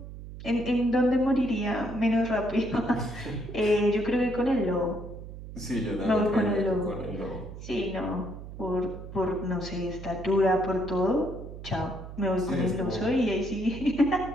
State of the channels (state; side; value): noise; right; hum, 12 dB below the sound